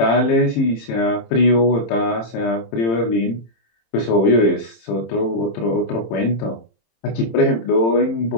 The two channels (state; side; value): late; right; 26 ms